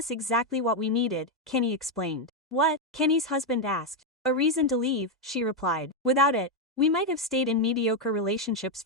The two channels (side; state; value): both; normal; correlation 0.03